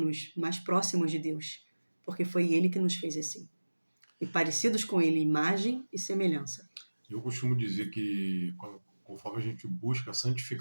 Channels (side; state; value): both; inverted; correlation -1.00